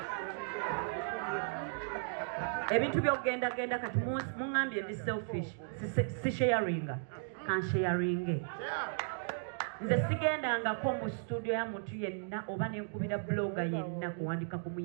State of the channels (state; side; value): silent; left; digital silence